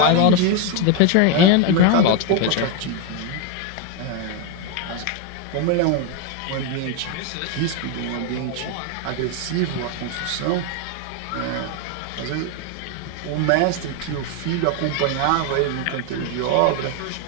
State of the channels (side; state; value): both; different; correlation 0.01